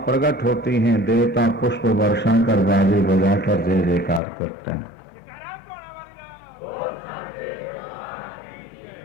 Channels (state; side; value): drops out; right; at 4.2 s